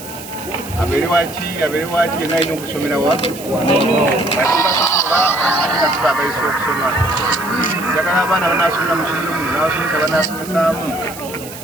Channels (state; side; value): noise; right; hiss, 14 dB below the sound